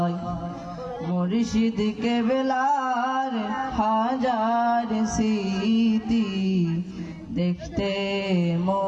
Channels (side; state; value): both; identical; correlation 1.00